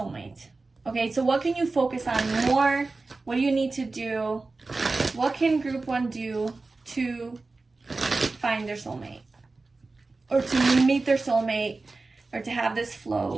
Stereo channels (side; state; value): left; quieter; 3.6 dB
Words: Okay, so what can you focus on more? What do you need to do? What can group 1 do to find their soulmate? Or to meet their soulmate? Or to have this